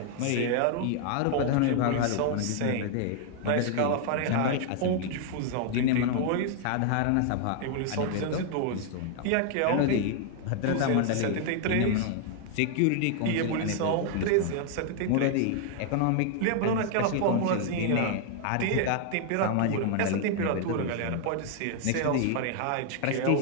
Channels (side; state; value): both; different; correlation 0.00